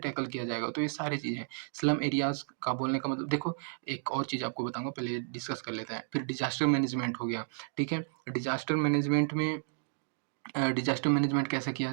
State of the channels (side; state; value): left; silent; digital silence